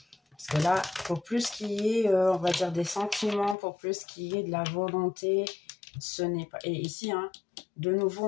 que là, pour plus qu'il y ait, on va dire, des sentiments, pour plus qu'il y ait de la volonté, ce n'est pas... Et ici, hein, de nouveau,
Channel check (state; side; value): drops out; right; at 3.6 s